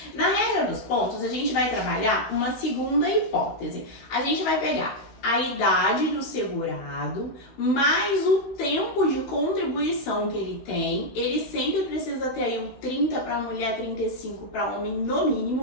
Na regra dos pontos, a gente vai trabalhar uma segunda hipótese. A gente vai pegar a idade do segurado, mais o tempo de contribuição que ele tem. Ele sempre precisa ter aí o 30 para mulher, 35 para homem no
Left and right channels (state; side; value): late; right; 16 ms